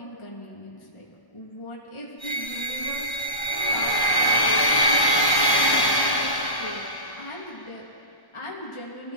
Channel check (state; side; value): late; right; 1.1 ms